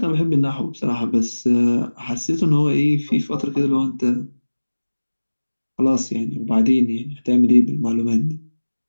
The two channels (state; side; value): inverted; both; correlation -1.00